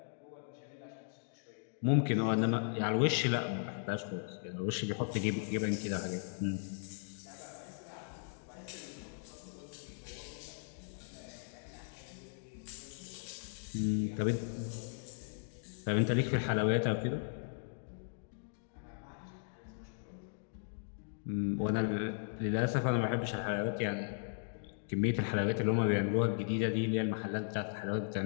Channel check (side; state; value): right; silent; digital silence